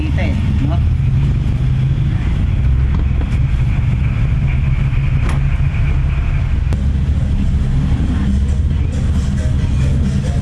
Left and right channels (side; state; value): both; identical; correlation 1.00